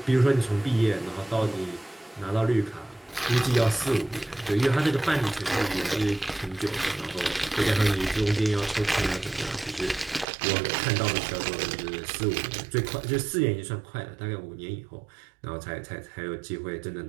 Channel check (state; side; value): drops out; left; at 10.2 s